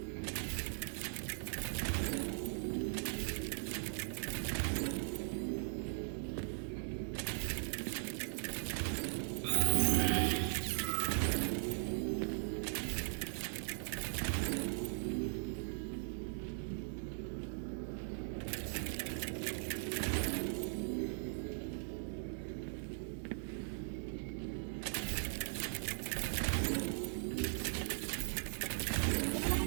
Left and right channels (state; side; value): silent; left; digital silence